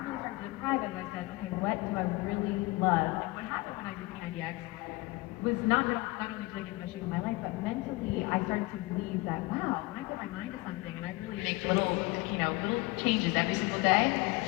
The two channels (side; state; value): right; quieter; 22.5 dB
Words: really started to thrive is I said, okay, what do I really love? And what happened when I did P90X was not only did I get the best shape of my life, but mentally I started to believe that, wow, when I put my mind to something and I really make little changes every single day,